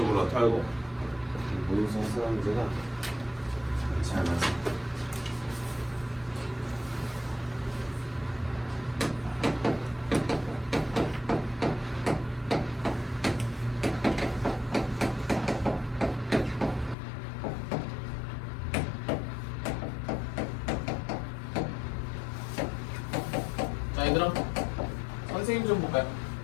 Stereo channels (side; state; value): right; drops out; at 16.9 s